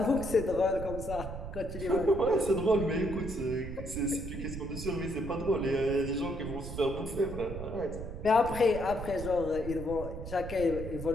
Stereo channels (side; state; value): right; noise; rumble, 8 dB below the sound